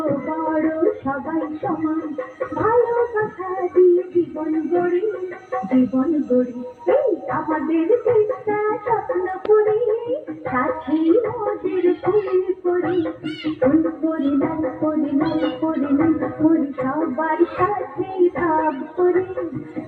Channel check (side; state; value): both; identical; correlation 1.00